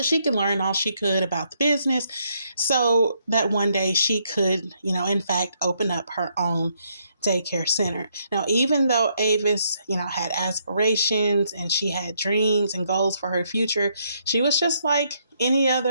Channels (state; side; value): inverted; both; correlation -0.74